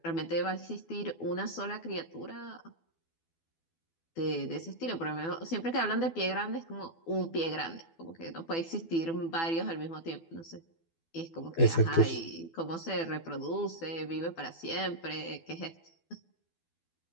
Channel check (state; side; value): late; right; 12 ms